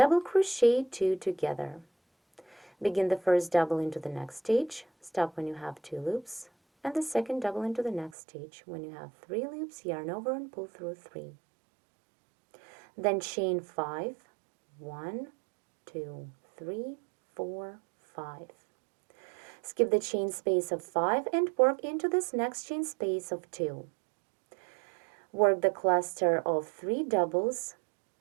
crochet 2 together. Begin the first double into the next stitch, stop when you have 2 loops, and the second double into the next stitch. When you have 3 loops, yarn over and pull through 3. Then chain 5, 1, 2, 3, 4, 5. Skip the chain space of 5 and work into this next chain space of 2. Work the cluster of 3 doubles,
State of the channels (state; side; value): drops out; left; at 8.1 s